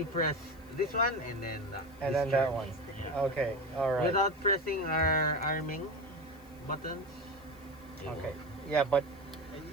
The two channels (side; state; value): left; noise; hiss, 27 dB below the sound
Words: press this one and then that one. Yeah. Okay. All right. Without pressing our arming buttons. Okay. Yeah, but